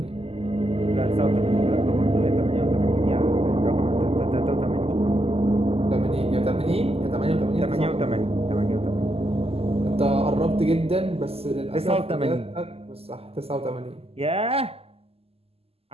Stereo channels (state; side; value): late; left; 0.29 ms